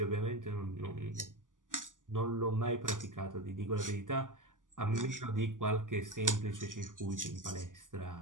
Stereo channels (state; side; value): late; left; 0.88 ms